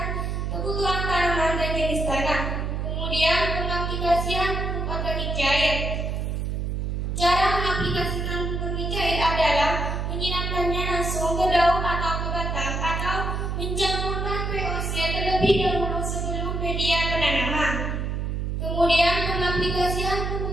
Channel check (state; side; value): noise; right; hum, 2 dB below the sound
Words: kebutuhan tanaman dan jenis tanah. Kemudian, pengaplikasian pupuk organik cair. Cara mengaplikasikan pupuk organik cair adalah menyiramkannya langsung ke daun atau ke batang atau mencampurkan VOC terlebih dahulu sebelum media penanaman. Kemudian, pengaplikasian